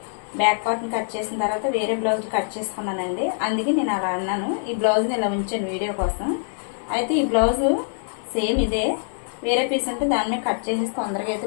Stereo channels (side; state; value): right; silent; digital silence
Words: బ్యాక్ పార్ట్ని కట్ చేసిన తర్వాత వేరే బ్లౌజ్ కట్ చేసుకున్నానండి. అందుకే నేను అలా అన్నాను. ఈ బ్లౌజ్ని ఇలా ఉంచాను వీడియో కోసం. అయితే ఈ బ్లౌజు సేమ్ ఇదే, వేరే పీస్ ఉంటే దాని మీద కట్ చేసేసి తొందరగా